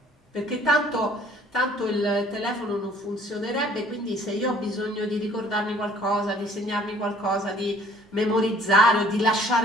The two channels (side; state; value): both; normal; correlation 0.56